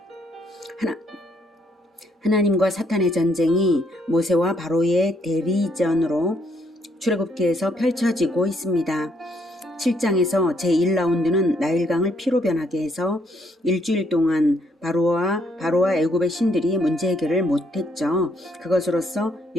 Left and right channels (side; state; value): both; normal; correlation 0.70